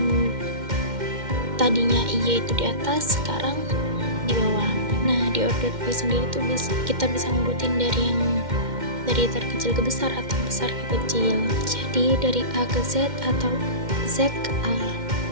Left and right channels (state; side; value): late; left; 2.1 ms